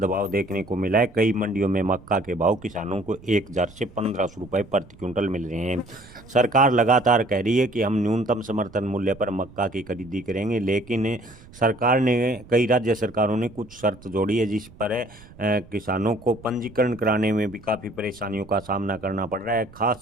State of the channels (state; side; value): noise; right; rumble, 22 dB below the sound